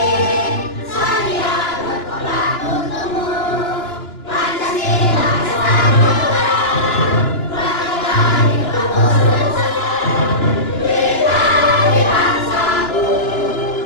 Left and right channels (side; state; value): right; late; 2.9 ms